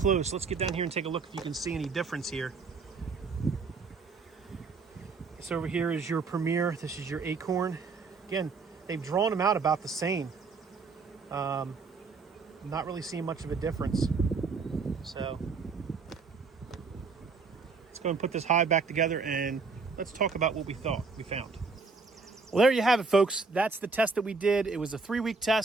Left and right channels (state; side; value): quieter; left; 4.5 dB